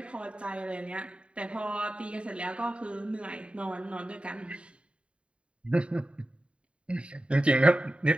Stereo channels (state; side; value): late; left; 0.059 ms